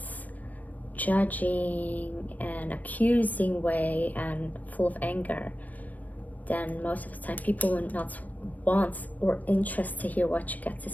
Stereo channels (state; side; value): late; right; 0.077 ms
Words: judging and accusing way and full of anger, then most of the time people will not want or interested to hear what you got to